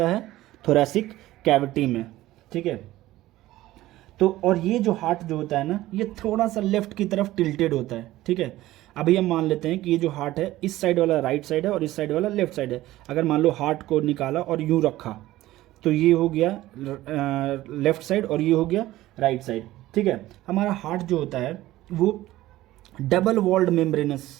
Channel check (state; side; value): quieter; left; 16.1 dB